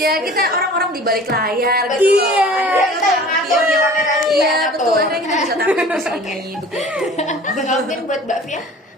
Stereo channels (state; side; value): normal; both; correlation 0.44